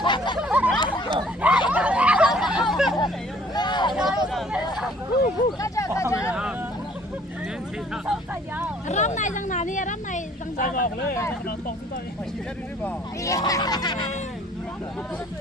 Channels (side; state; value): both; normal; correlation 0.57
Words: Rắm này răng nào đi, rắm này răng Sai nào. vào lấy, nó tông chúng tôi.